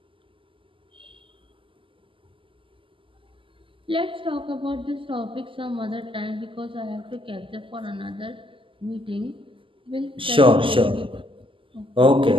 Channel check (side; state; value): left; late; 0.25 ms